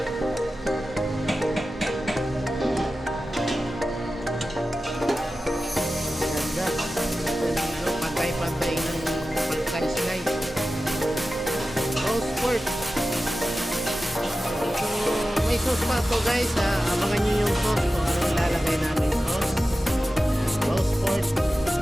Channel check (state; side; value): normal; both; correlation 0.94